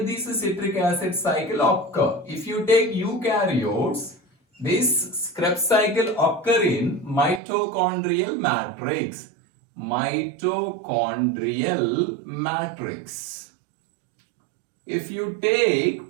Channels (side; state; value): left; drops out; at 7.4 s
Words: this citric acid cycle occur. If you take eukaryotes, this Krebs cycle occur in mitochondrial matrix. Mitochondrial matrix. If you take